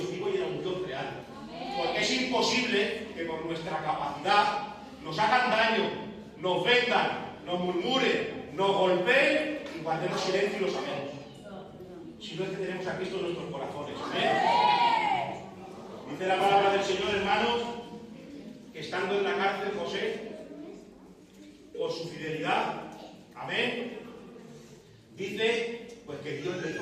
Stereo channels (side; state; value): both; identical; correlation 1.00